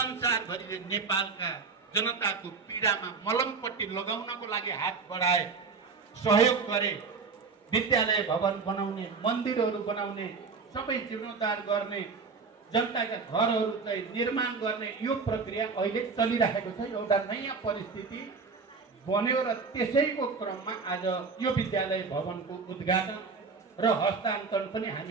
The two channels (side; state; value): left; quieter; 4.8 dB